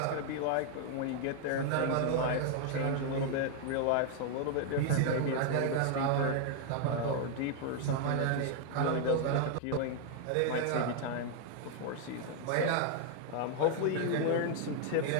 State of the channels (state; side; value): different; both; correlation 0.00